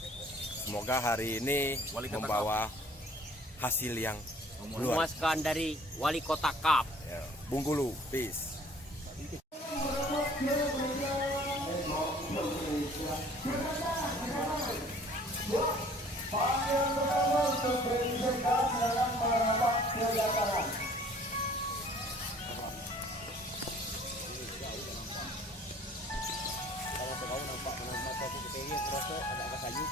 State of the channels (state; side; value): normal; both; correlation 0.53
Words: Semoga hari ini membawa hasil yang Memuaskan dari Wali Kota Kap. Ya, Bengkulu, peace.